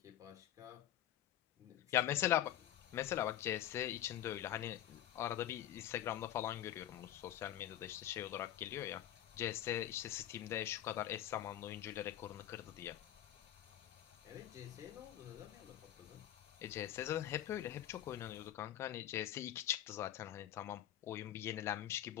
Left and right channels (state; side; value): quieter; right; 12.1 dB